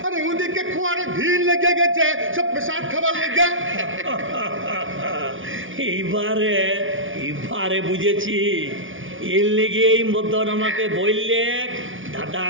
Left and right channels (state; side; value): late; left; 0.57 ms